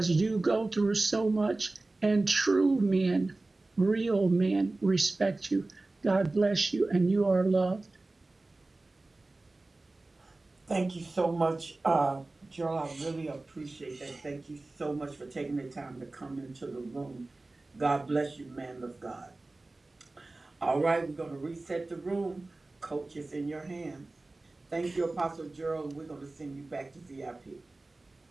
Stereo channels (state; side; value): quieter; left; 3.1 dB